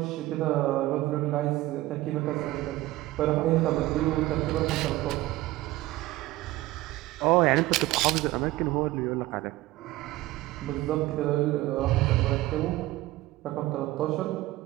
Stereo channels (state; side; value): quieter; left; 17.5 dB